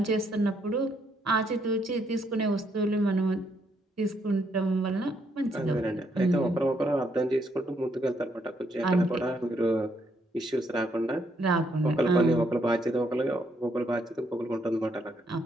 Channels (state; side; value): normal; both; correlation 0.73